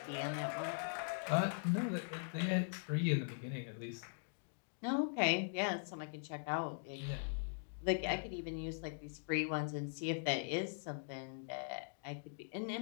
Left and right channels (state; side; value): silent; right; digital silence